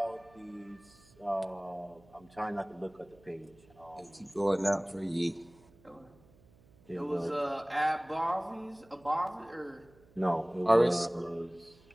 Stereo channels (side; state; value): right; noise; hum, 27 dB below the sound